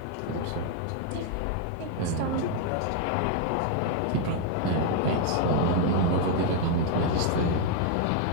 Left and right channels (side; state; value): both; different; correlation 0.00